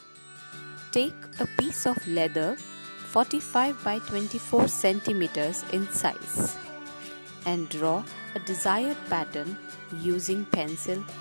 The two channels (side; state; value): both; inverted; correlation -1.00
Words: Take a piece of leather 45 by 24 centimeters in size and draw a desired pattern using pencil